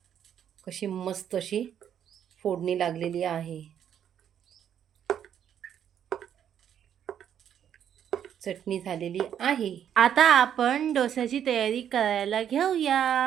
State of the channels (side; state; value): left; quieter; 9.3 dB